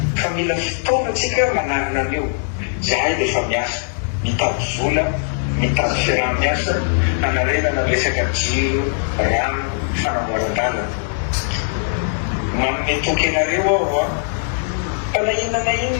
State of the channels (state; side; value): silent; right; 63 dB below the other